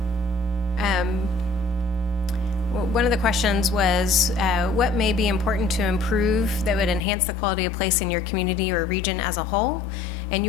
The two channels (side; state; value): right; drops out; at 7.0 s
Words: One of the questions was, what may be important to improve that would enhance the quality of place in your community or region as a whole? And